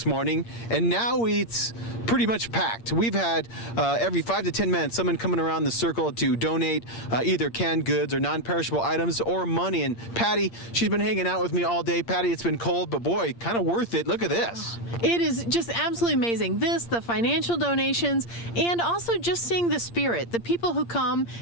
morning, and now it's pretty much packed. We've had every 5 to 10 minutes someone coming around the circle to donate either canned goods or non-perishable items or money. And Patty, she's been hanging out with me all day. Patty, it's been cold, but boy, kind of worth it. Look at this. It is just absolutely amazing. This, the financial donations, and also just seeing the spirit. The people who come,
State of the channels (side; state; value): right; late; 8.6 ms